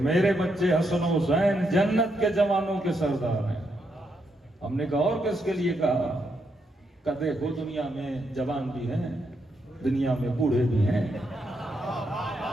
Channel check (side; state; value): both; normal; correlation 0.79